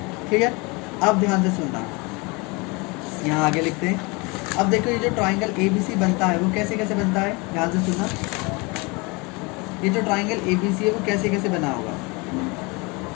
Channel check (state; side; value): quieter; right; 27.4 dB